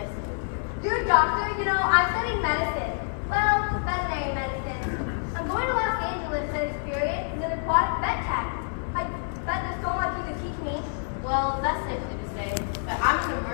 to meet you. You're a doctor? You know, I'm studying medicine. Well, veterinary medicine. I'm going to Los Angeles to experience an aquatic vet tech. I bet there's so much you could teach me. Well, that's nice of you to say, but I'm an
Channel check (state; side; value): silent; right; 60 dB below the other